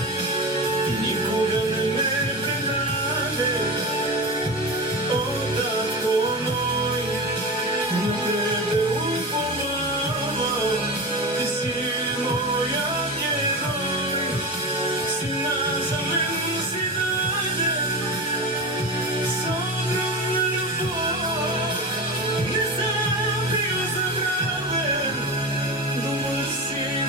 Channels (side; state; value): both; normal; correlation 0.24